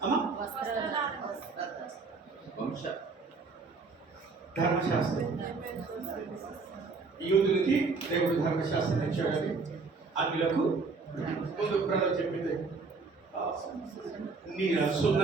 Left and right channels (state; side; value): quieter; left; 4.3 dB